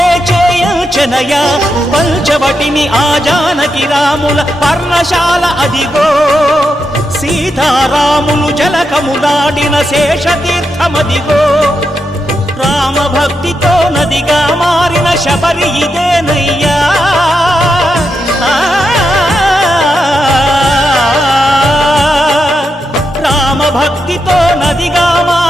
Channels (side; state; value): both; normal; correlation 0.85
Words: చేయించనయా పంచవటిని ఆ జానకి రాముల పర్ణశాల అదిగో సీతారాములు జలకములాడిన శేషతీర్థమదిగో రామభక్తితో నదిగా మారిన శబరి ఇదేనయ్యా భక్తితో నదిగా